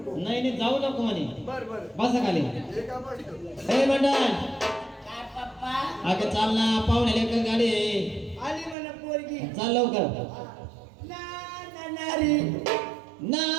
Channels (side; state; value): left; drops out; at 8.8 s